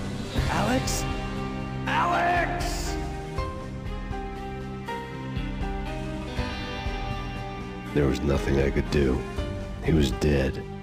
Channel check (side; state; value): both; identical; correlation 1.00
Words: Alex? Alex! There was nothing I could do. He was dead.